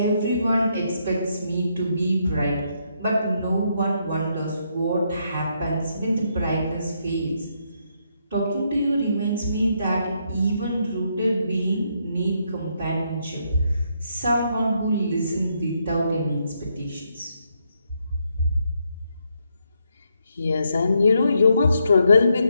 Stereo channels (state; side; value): inverted; both; correlation -0.77